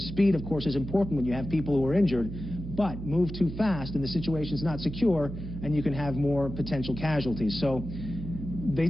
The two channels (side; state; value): right; noise; hum, 8 dB below the sound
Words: speed, of course, is important when you have people who are injured, but move too fast and the situation's not secure and you can have more potential casualties. So they